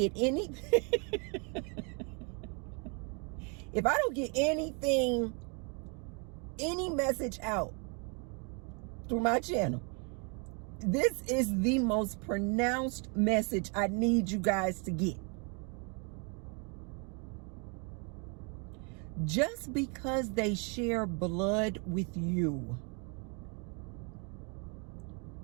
anything, if I don't get anything, any message out through my channel, this is the most pronounced message I need you guys to get. Just because they share blood with you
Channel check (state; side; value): quieter; left; 35.3 dB